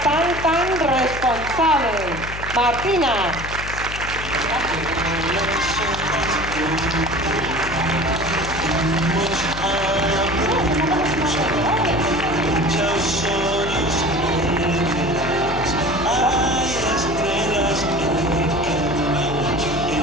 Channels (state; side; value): noise; left; hum, 10 dB below the sound